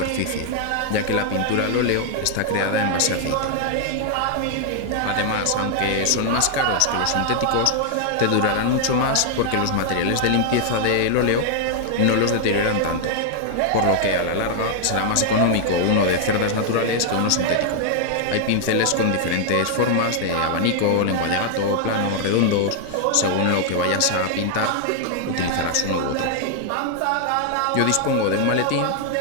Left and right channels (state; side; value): different; both; correlation 0.00